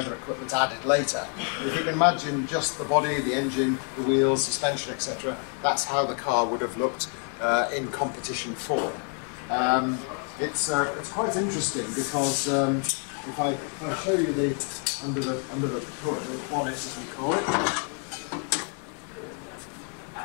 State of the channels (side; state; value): right; quieter; 39.8 dB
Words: equipment added later. But if you can imagine just the body, the engine, the wheels, suspension, etc., that's how the car would have looked in competition form. It's quite interesting because if I show you the under the hood, the bonnet as we call it,